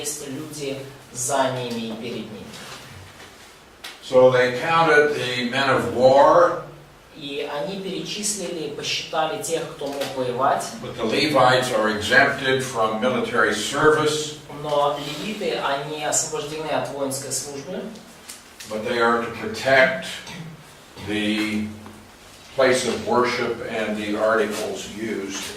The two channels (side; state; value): both; identical; correlation 1.00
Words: люди за ними и перед ними. So they counted the men of war. И они перечислили, посчитали тех, кто мог воевать. But the Levites are exempted from military service. Но левиты, они освобождены от воинской службы. But they are to protect the place of worship and the articles used.